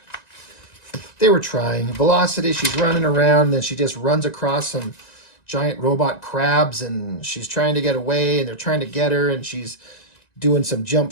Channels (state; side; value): late; right; 1.9 ms